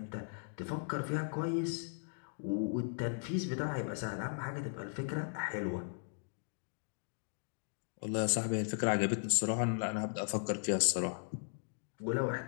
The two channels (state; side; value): silent; right; digital silence